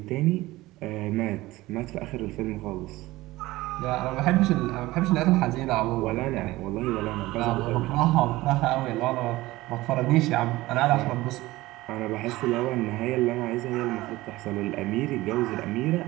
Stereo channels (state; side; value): quieter; left; 18.5 dB